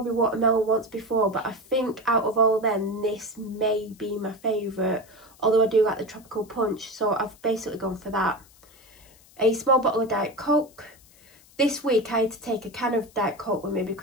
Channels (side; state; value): left; noise; hiss, 27 dB below the sound